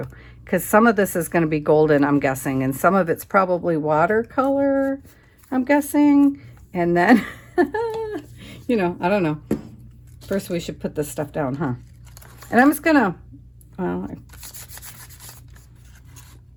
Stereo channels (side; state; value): both; identical; correlation 1.00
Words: because some of this is going to be golden, I'm guessing, and some of it's probably watercolor, I'm guessing. And then, you know, I don't know. First, we should put this stuff down, huh? And I'm just gonna, well,